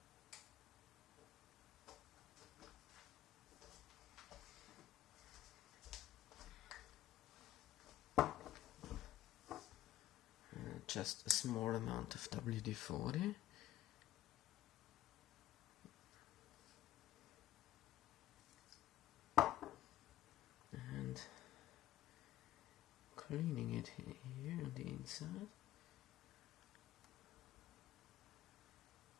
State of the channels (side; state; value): right; quieter; 13.5 dB